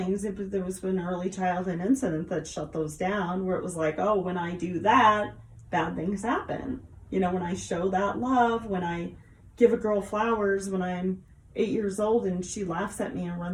There was an early childhood incident that shut those down, where it was like, oh, when I do that, bad things happen. When I show that love, when I give a girl flowers when I'm 8 years old and she laughs at me and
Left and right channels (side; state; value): both; identical; correlation 1.00